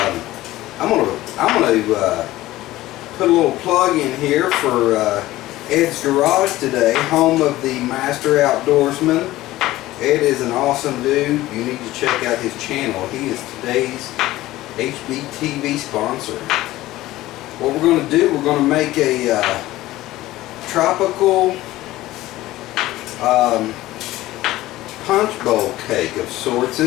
gonna put a little plug in here for Ed's Garage today, home of the Master Outdoorsman. Ed is an awesome dude. You need to check out his channel. He is today's HBTV sponsor. What we're going to do, we're going to make a tropical Punchbowl cake of sorts.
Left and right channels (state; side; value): quieter; right; 16.5 dB